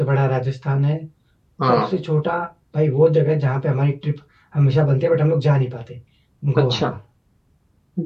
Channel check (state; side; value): identical; both; correlation 1.00